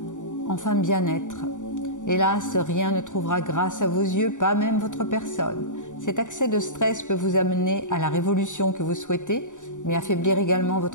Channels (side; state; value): right; late; 0.86 ms